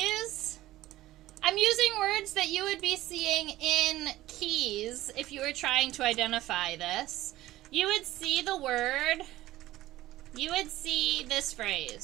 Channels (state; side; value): quieter; left; 16.0 dB